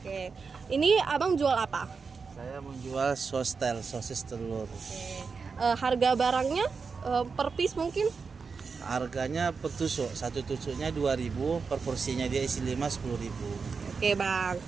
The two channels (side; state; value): left; quieter; 5.1 dB